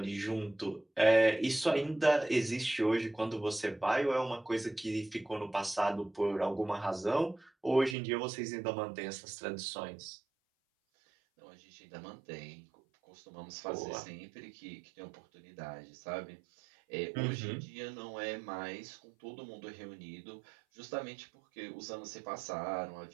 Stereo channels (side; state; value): left; drops out; at 8.0 s